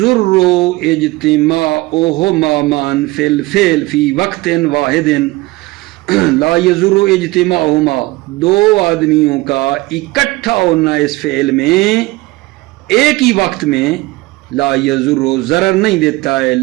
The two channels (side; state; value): left; quieter; 21.0 dB